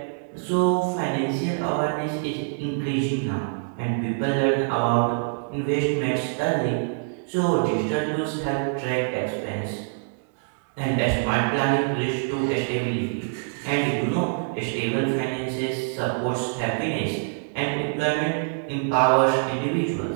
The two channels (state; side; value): silent; left; digital silence